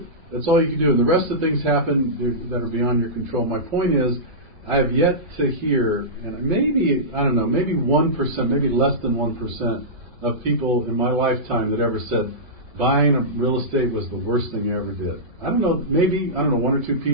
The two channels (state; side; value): late; left; 2.3 ms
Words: That's all you can do. And the rest of the things happen that are beyond your control. My point is, I have yet to hear, and maybe 1%, maybe less than 1%, of people in my lifetime that ever said buying a real estate was the worst thing I ever did. I don't know, 1 or 2